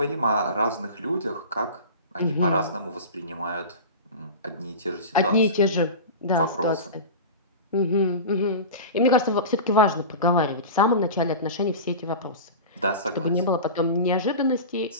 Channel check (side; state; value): both; inverted; correlation -0.30